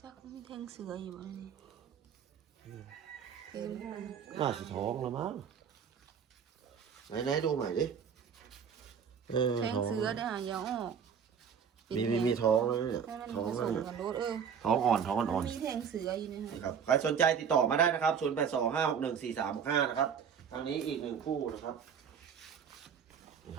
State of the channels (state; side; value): quieter; left; 7.3 dB